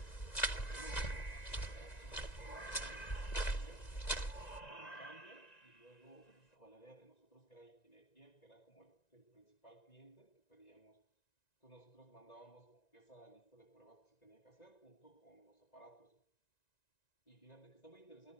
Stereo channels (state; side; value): late; right; 1.9 ms